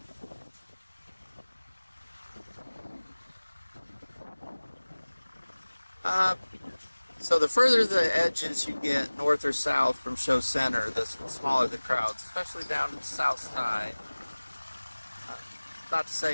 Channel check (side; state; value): both; inverted; correlation -1.00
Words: So the further the edges you get, north or south from show center, the smaller the crowds, especially down to the south side. Not to